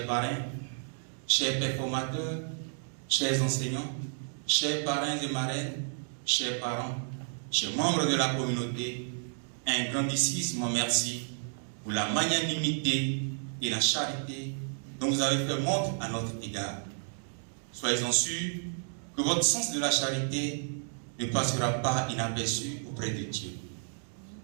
parrains, chers performateurs, chers enseignants, chers parrains et marraines, chers parents, chers membres de la communauté, un grandissime merci pour la magnanimité et la charité dont vous avez fait montre à notre égard. Soyez-en sûrs que votre sens de la charité ne passera pas inaperçu auprès de Dieu.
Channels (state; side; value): silent; left; digital silence